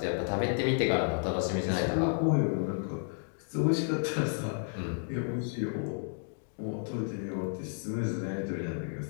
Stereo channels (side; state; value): right; silent; digital silence